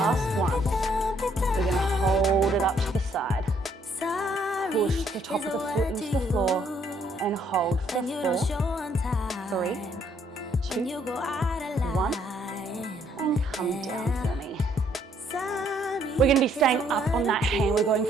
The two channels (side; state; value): both; normal; correlation 0.67